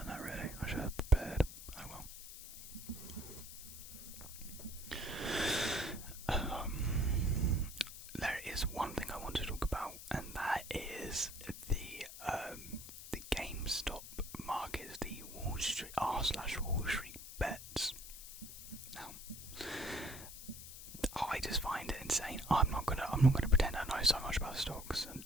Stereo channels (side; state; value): left; noise; hiss, 12 dB below the sound